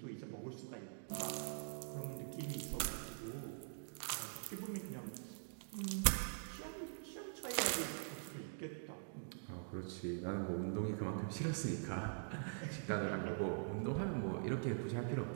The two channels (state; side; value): silent; left; digital silence